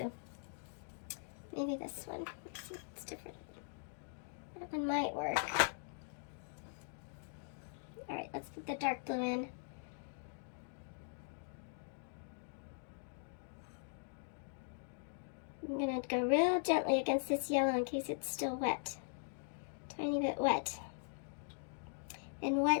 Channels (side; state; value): right; silent; digital silence